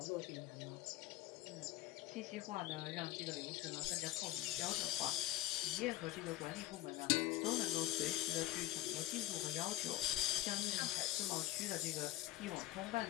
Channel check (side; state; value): right; quieter; 15.9 dB